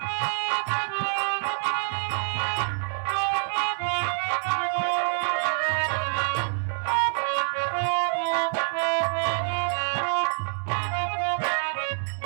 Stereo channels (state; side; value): silent; left; 61 dB below the other